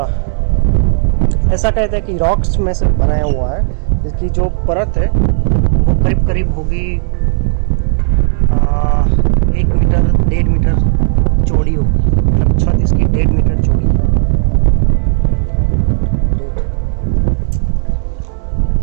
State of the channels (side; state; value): left; silent; digital silence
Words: ऐसा कहते हैं कि रॉक्स में से बनाया हुआ है। इसकी जो परत है वो करीब करीब होगी 1 मीटर 1.5 मीटर चौड़ी होगी। मतलब छत इसकी 1.5 मीटर चौड़ी है।